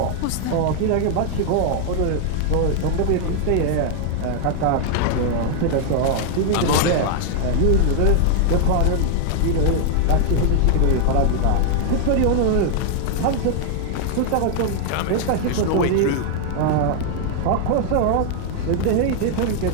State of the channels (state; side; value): different; both; correlation 0.00